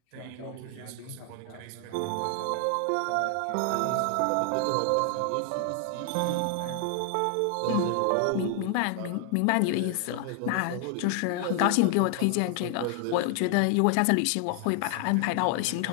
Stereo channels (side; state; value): both; different; correlation 0.00